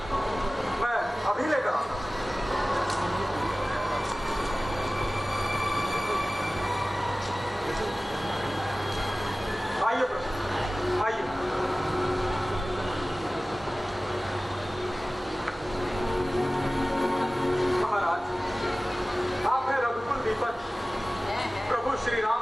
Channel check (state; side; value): normal; both; correlation 0.97